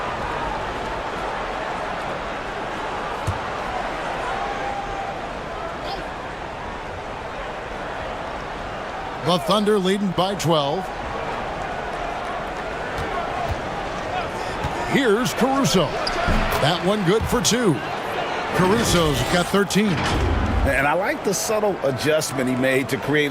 The Thunder leading by 12. Here's Caruso. That one good for 2. Caruso's got 13. And I like the subtle adjustment he made to create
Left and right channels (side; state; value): both; identical; correlation 1.00